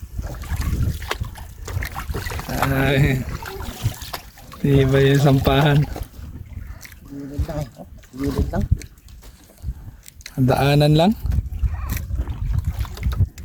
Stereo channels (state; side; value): identical; both; correlation 1.00